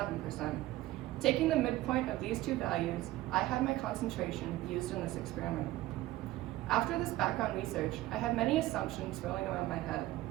Taking the midpoint of these 2 values, I had my concentration used in this experiment. After this background research, I had many assumptions swirling around my head.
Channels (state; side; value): quieter; left; 16.5 dB